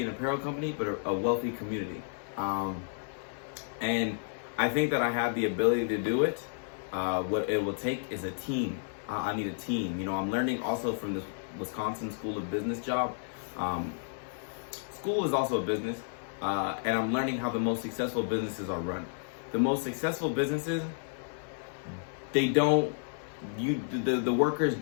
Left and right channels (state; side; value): silent; right; digital silence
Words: an apparel company, but a wealthy community. And I think that I have the ability to do it. What it will take is a team. I need a team. I'm learning also from this Wisconsin School of Business job. School is also a business. And I'm learning how the most successful businesses are run. The most successful businesses, the workers